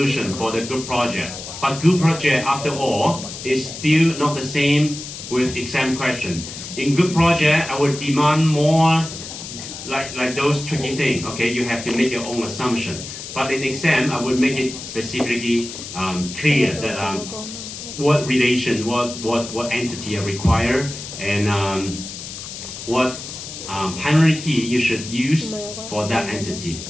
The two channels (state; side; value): noise; left; hiss, 10 dB below the sound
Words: for the group project. But group project, after all, is still not the same with exam question. In group project, I would demand more like those tricky things. Okay, you have to make your own assumption. But in exam, I would make it specifically clear that what relation, what entity are required, and what primary key you should use for that entity.